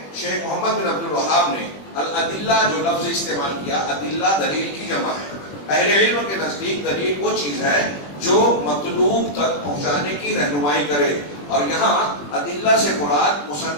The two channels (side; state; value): right; late; 21 ms